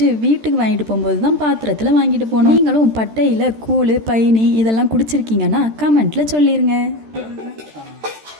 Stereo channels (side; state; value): left; late; 13 ms